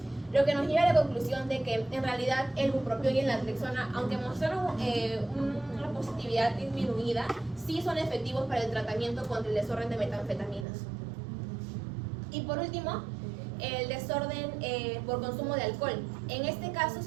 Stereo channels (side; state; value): left; drops out; at 10.7 s